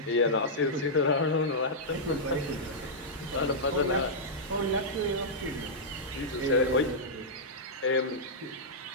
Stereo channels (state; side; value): normal; both; correlation -0.09